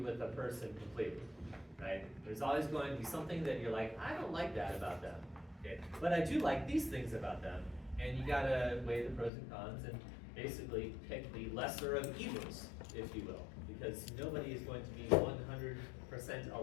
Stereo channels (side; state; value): right; drops out; at 9.3 s